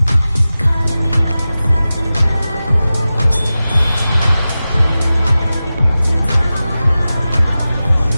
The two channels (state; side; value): inverted; both; correlation -0.95